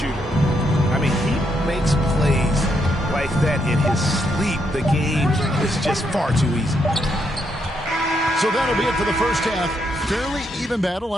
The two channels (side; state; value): both; normal; correlation 0.77